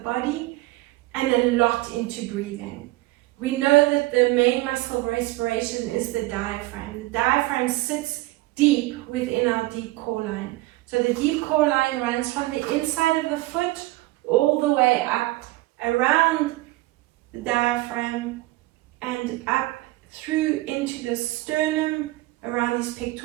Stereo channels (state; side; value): quieter; left; 19.3 dB